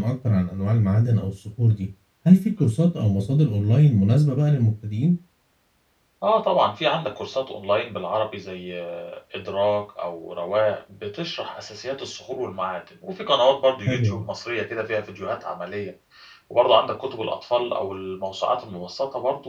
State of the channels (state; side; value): identical; both; correlation 1.00